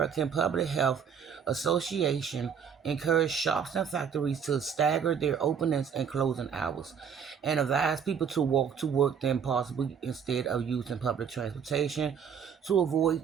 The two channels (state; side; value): quieter; left; 7.2 dB